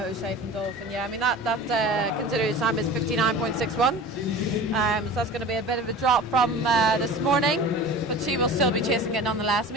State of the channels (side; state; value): both; normal; correlation 0.37